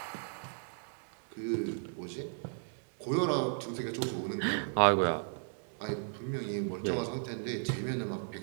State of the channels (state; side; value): silent; left; digital silence